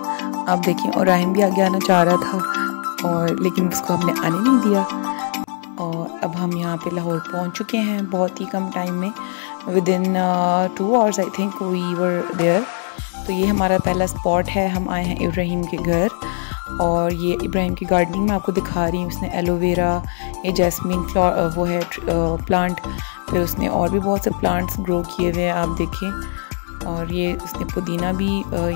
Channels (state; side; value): silent; right; digital silence